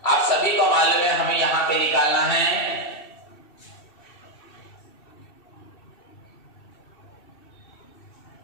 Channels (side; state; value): right; late; 2.7 ms